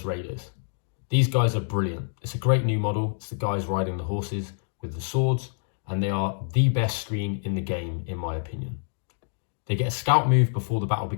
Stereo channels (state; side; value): silent; right; digital silence